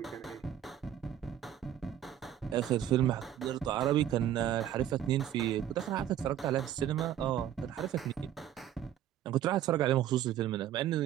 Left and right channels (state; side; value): quieter; left; 11.0 dB